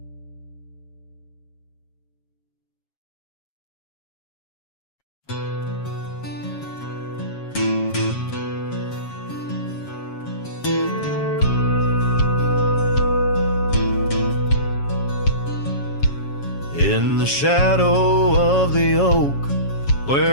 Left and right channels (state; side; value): late; right; 7.3 ms